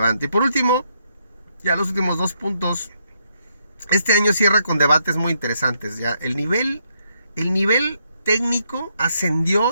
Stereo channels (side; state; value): both; inverted; correlation -0.76